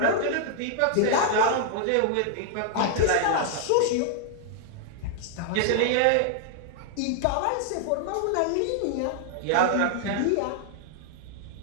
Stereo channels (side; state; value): both; different; correlation -0.01